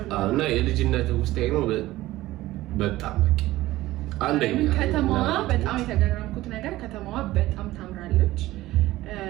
እና የልጅነት ውስጥ ነው በጣም በቃ አንደኛ ከተማዋ በጣም የተገረምኩት ነገር ከተማዋ በጣም ታምራለች።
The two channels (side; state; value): left; quieter; 16.9 dB